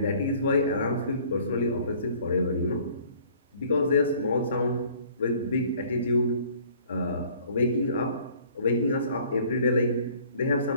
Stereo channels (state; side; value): inverted; both; correlation -0.55